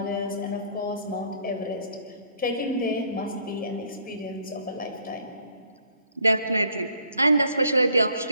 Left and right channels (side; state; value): both; inverted; correlation -0.62